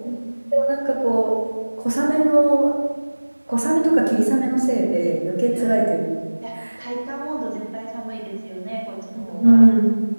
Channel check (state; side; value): inverted; both; correlation -1.00